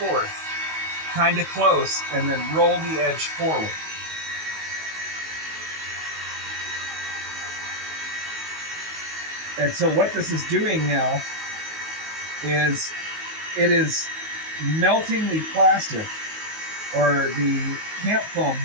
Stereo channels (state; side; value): late; left; 19 ms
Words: kind of close, and then roll the edge forward. And so what this is doing now is it is melting the plastic or the camp foam